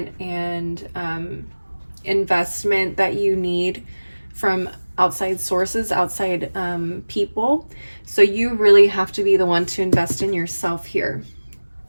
and investment that you need from outside sources, outside people. So you really have to be the one to invest in yourself here.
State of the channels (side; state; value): both; inverted; correlation -1.00